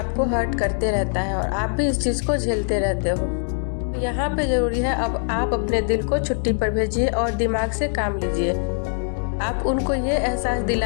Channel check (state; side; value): silent; right; 64 dB below the other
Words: हर्ट करते रहता है और आप भी इस चीज़ को झेलते रहते हो। तो यहाँ पे ज़रूरी है अब आप अपने दिल को छुट्टी पर भेजिए और दिमाग से काम लीजिए। आप उनको ये एहसास